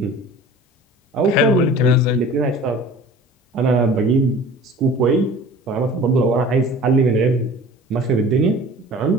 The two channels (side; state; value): both; normal; correlation 0.43